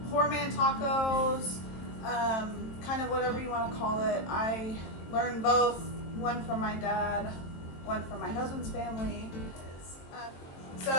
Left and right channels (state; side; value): late; right; 23 ms